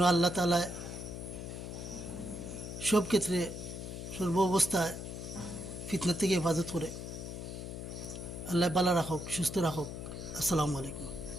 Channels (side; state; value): left; noise; hum, 8 dB below the sound